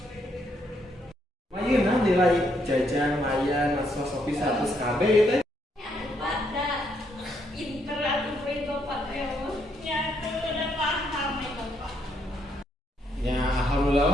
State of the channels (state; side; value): normal; both; correlation 0.74